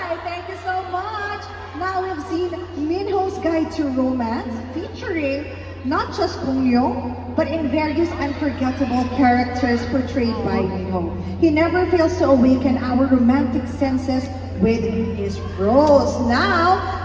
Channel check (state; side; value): identical; both; correlation 1.00